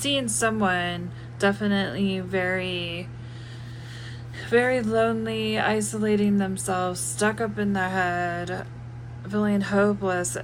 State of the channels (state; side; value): identical; both; correlation 1.00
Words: someone definitely very, very lonely, isolating themselves, stuck up in their head, feeling hopeless